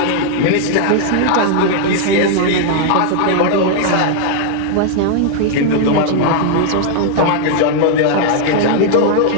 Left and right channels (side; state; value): both; different; correlation 0.00